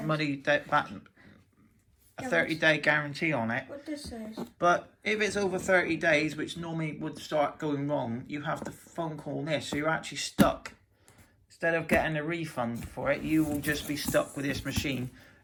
a 30-day guarantee on it. What this says. But if it's over 30 days, which normally would start going wrong, you have to phone call this, so you're actually stuck. Instead of getting a refund for it, you will just be stuck with this machine,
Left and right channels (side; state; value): both; identical; correlation 1.00